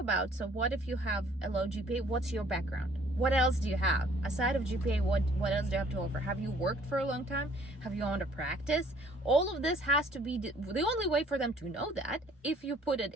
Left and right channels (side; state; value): both; normal; correlation 0.58